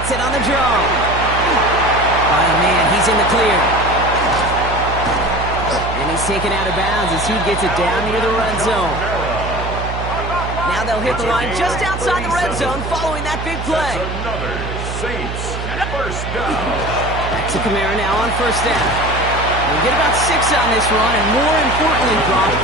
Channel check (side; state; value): right; noise; hum, 6 dB below the sound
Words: it on the draw. Oh, man, he's in the clear. And he's taken out of bounds as he gets it down near the red zone. Now they'll hit the line just outside the red zone following that big play. That's another Saints first down. Back to Kamara now on first down. They'll get about 6 on this run, and more importantly, Brock